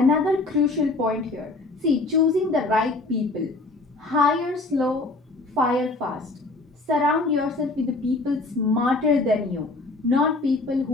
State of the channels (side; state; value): right; quieter; 3.2 dB